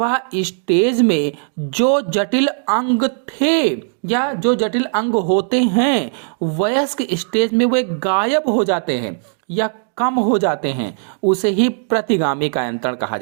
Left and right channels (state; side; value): silent; left; 65 dB below the other